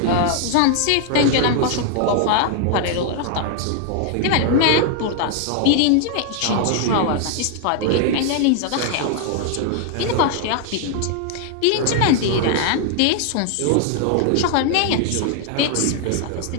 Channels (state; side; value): different; both; correlation 0.00